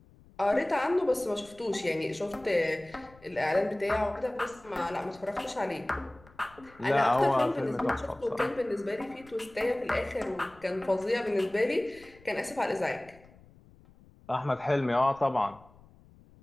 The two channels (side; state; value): left; noise; rumble, 25 dB below the sound